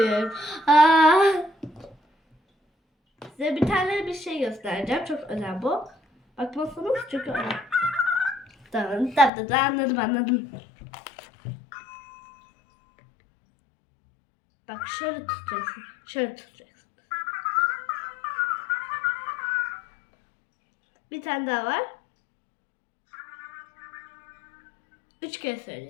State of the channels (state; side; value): drops out; right; at 9.3 s